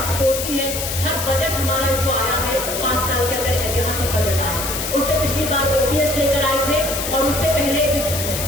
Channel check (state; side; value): noise; left; hiss, 4 dB below the sound